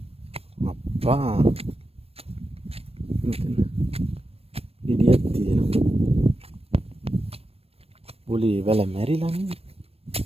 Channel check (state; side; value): late; left; 0.28 ms